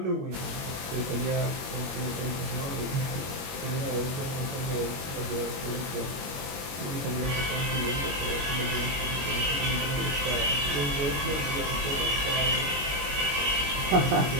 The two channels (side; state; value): left; late; 21 ms